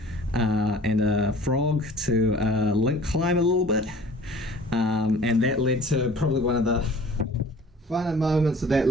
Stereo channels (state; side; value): normal; both; correlation 0.48